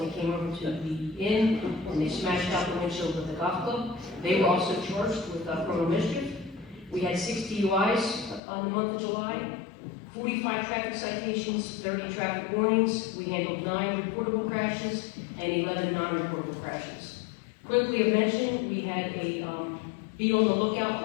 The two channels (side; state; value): right; drops out; at 8.4 s